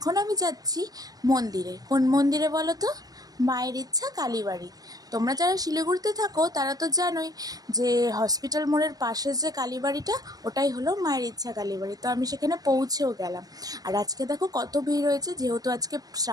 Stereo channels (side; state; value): left; late; 0.18 ms